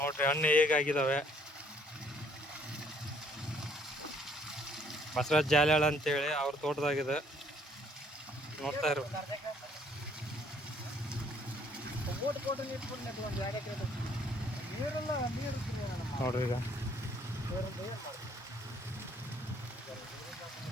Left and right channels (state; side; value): normal; both; correlation 0.63